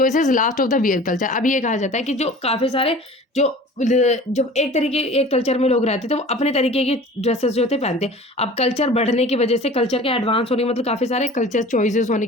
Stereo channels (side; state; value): both; normal; correlation 0.42